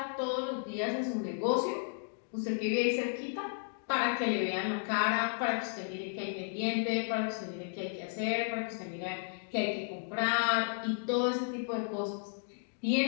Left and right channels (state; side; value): silent; right; digital silence